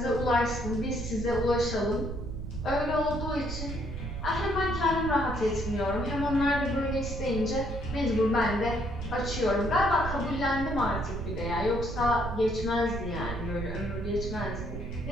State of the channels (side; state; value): right; noise; rumble, 6 dB below the sound